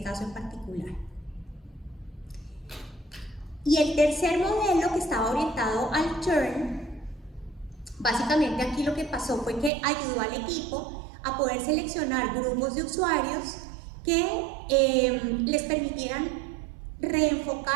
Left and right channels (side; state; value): left; drops out; at 9.7 s